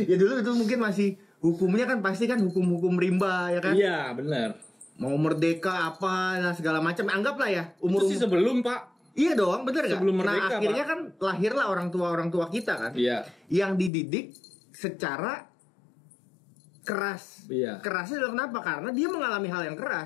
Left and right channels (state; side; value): drops out; right; at 13.9 s